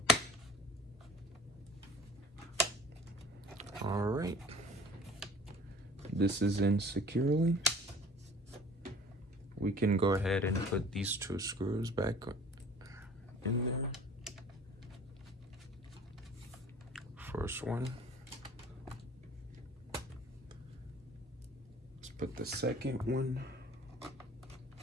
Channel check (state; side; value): normal; both; correlation 0.48